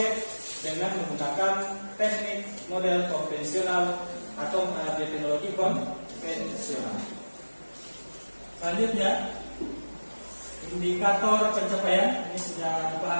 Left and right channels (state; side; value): inverted; both; correlation -1.00